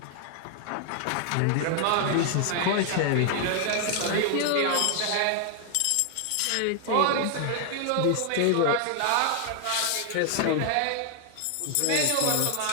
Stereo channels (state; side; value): different; both; correlation 0.00